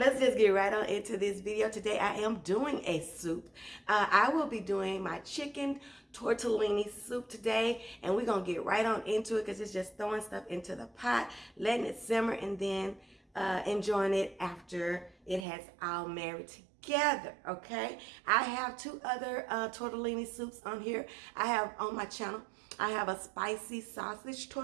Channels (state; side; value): drops out; left; at 15.5 s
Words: just get right on into this video. Today I am doing a soup. I will be doing my chicken tortellini soup today, and we're gonna get right on into it because it's just throwing stuff into the pot, letting it simmer, and then enjoying it after it has all married together, okay? I have two other tortellini soups on here. I have on my channel. I have a spicy sausage